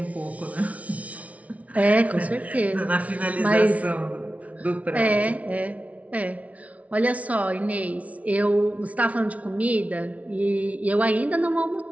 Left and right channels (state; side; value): late; left; 0.067 ms